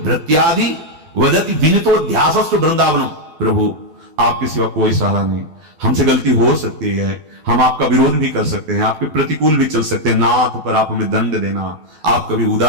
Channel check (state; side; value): late; left; 12 ms